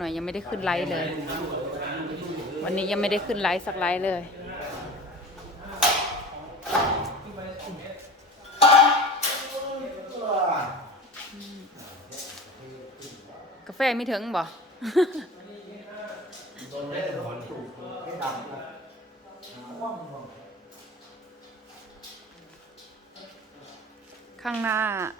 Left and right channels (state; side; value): normal; both; correlation 0.36